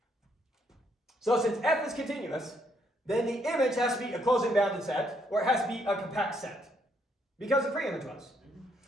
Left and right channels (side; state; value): both; normal; correlation 0.72